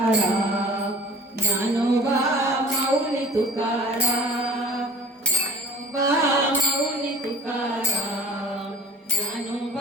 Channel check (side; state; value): both; normal; correlation 0.45